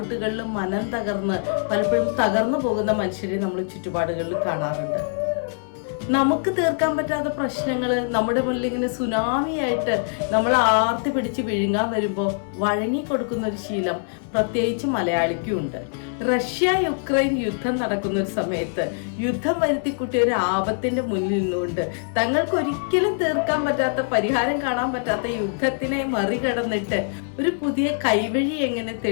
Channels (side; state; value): right; silent; 63 dB below the other